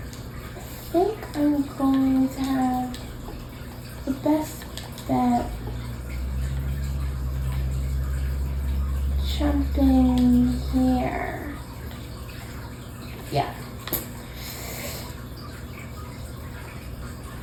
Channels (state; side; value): identical; both; correlation 1.00